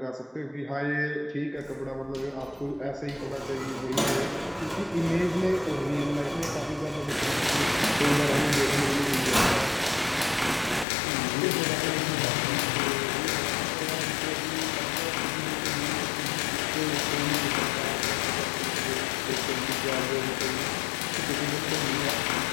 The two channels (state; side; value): drops out; right; at 10.9 s